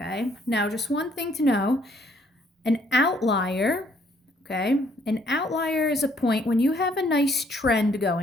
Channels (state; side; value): normal; both; correlation 0.66